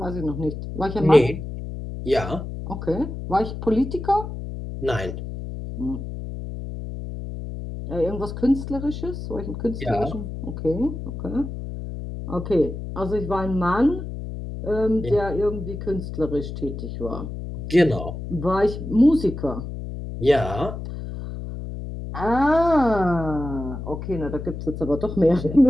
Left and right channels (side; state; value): left; noise; hum, 8 dB below the sound